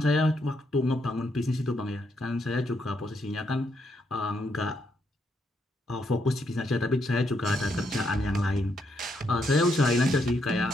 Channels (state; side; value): normal; both; correlation 0.77